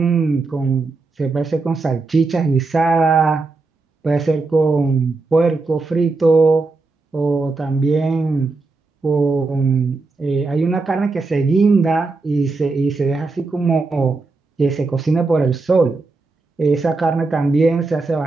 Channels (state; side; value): quieter; left; 3.7 dB